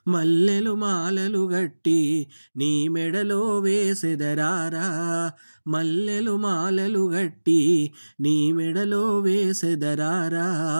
మల్లెలు మాలలు గట్టి నీ మెడలో వేసెదరారా. మల్లెలు మాలలు గట్టి నీ మెడలో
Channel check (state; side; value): inverted; both; correlation -1.00